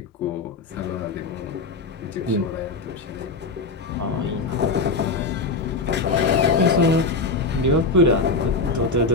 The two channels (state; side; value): quieter; right; 3.8 dB